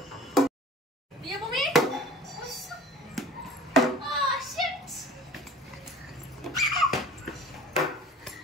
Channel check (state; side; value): normal; both; correlation 0.44